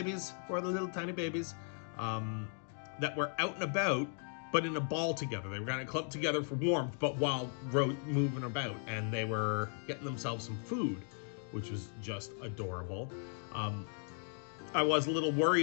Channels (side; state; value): right; silent; 53 dB below the other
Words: 4 of the little tiny babies, that were out and about, but in a ball together. They were kind of clumped together for warmth, but while moving about, and they were getting themselves some food, which was just adorable. I was a little